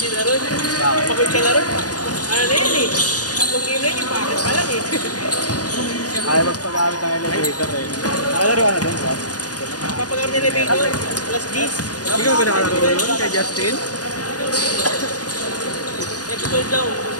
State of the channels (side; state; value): right; late; 0.68 ms